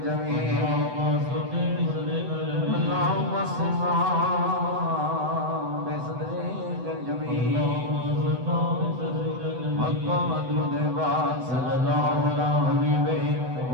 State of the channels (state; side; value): late; left; 8.0 ms